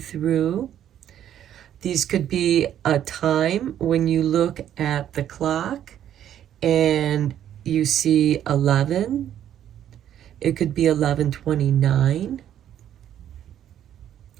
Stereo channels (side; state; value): left; quieter; 10.6 dB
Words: These could be a time when you look at the clock and you see 11. It could be 11:29.